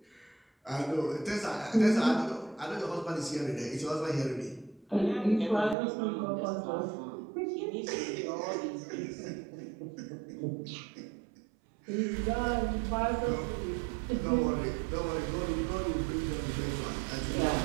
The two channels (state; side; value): drops out; left; at 5.8 s